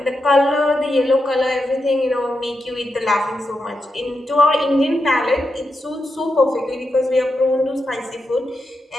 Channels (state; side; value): normal; both; correlation 0.87